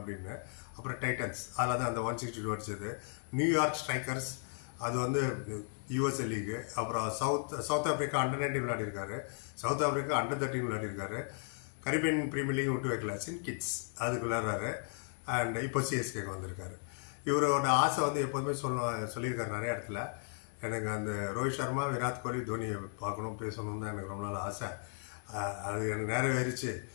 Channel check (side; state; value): right; silent; 54 dB below the other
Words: அப்புறம் டைட்டன்ஸ், அதில் தான் அந்த 162 அடிச்சது. நியூயார்க் ஸ்ட்ரைக்கர்ஸ், அது வந்து USA லீகு. அப்புறம் சவுத் ஆஃப்ரிக்கா அண்டர்-19 விளையாடிருக்காரு. சவுத் ஆஃப்ரிக்கா அண்டர்-13 விளையாடிருக்காரு. கரீபியன் பிரீமியர் லீக் விட்டு வைக்கல, சின் கிட்ஸ் அதுக்கு விளையாடுறாரு. அண்ட் இப்போ சிஎஸ்கேக்கு வந்திருக்காரு. இவரோட ஆசை வந்து எப்போதுமே சொல்லியிருக்காரு நிறைய இடத்துல. எனக்கு அந்த ரோஹித் சர்மா, விராட் கோலி, தோனியை பார்க்கணும், பேசணும் தான் எனக்கு ரொம்ப நாள் ஆசை. அது எனக்கு நிறைவேறிச்சு.